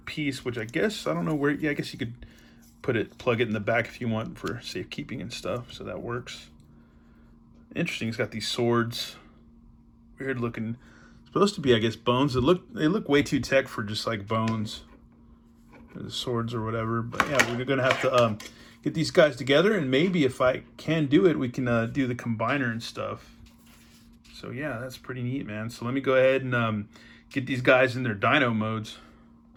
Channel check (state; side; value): identical; both; correlation 1.00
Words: piece, which I guess, I don't know where, yeah, I guess you could plug it in the back if you want for safekeeping and stuff, so that works. Interesting, it's got these swords. Weird looking, supposed to be, I guess, bones. They look way too tech for just like bones. The swords or whatever, but yeah, we're gonna have to get these guys together, and maybe if I can do it, we can do the combiner and stuff. So yeah, that's pretty neat, man. So let me go ahead and get these guys in their dino modes.